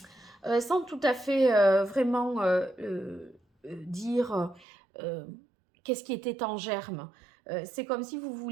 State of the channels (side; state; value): left; drops out; at 4.7 s